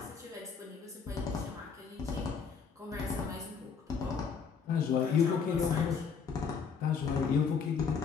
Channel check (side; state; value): right; quieter; 6.0 dB